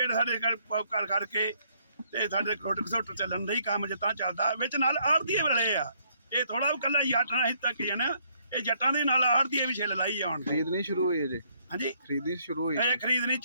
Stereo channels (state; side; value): inverted; both; correlation -0.68